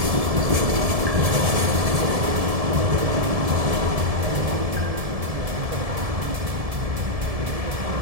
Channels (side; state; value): left; late; 1.7 ms